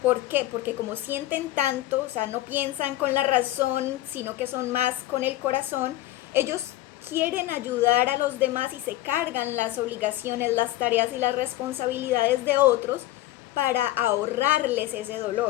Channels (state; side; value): quieter; right; 15.7 dB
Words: ¿Por qué? Porque como sienten tanto, o sea, no piensan con la razón, sino que son más con el corazón, ellos quieren ayudar a los demás y se cargan las obligaciones, las tareas y las responsabilidades de otros para ahorrarles ese